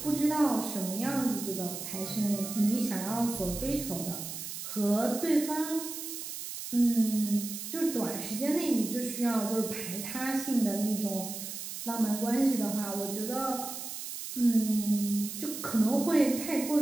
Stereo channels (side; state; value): right; noise; hiss, 8 dB below the sound